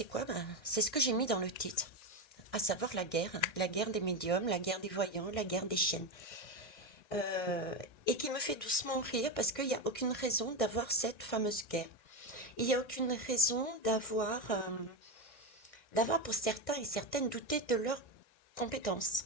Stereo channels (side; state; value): right; late; 1.6 ms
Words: quoi? C'est ce que j'ai mis dans le titre, à savoir la guerre des médiums, la guerre des voyants, la guerre des chaînes. Euh, et qui me fait doucement rire parce qu'il n'y a aucune raison d'avoir cette fameuse guerre. Il n'y a aucune raison d'avoir pour certains et certaines douté de leurs compétences,